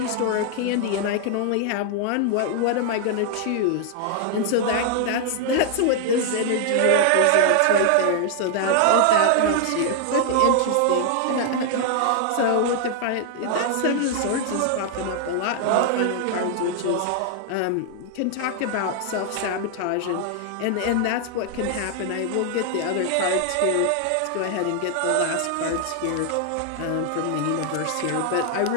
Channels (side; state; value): both; different; correlation 0.00